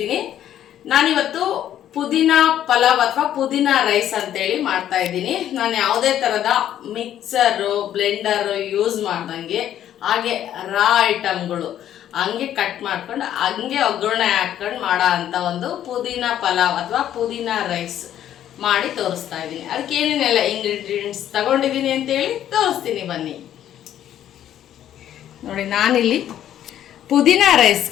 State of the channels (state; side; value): quieter; right; 11.1 dB